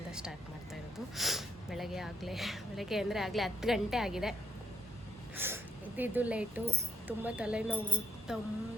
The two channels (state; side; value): normal; both; correlation 0.76